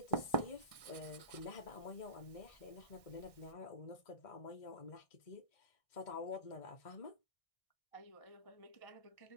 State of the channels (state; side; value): late; right; 1.6 ms